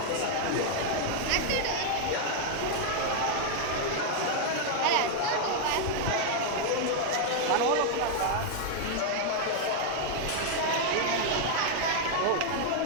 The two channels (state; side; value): different; both; correlation 0.00